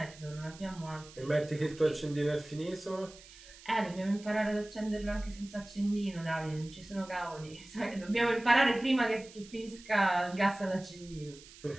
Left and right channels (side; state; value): right; noise; hiss, 20 dB below the sound